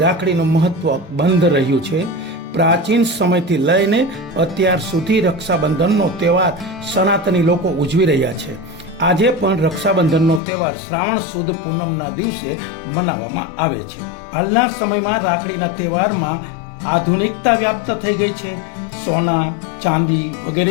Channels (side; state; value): right; drops out; at 10.4 s